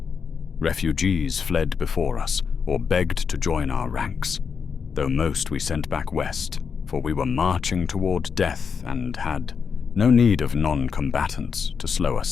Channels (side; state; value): right; quieter; 6.1 dB